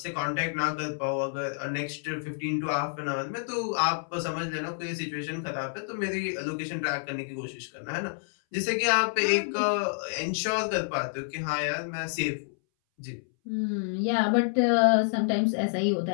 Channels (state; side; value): silent; right; 59 dB below the other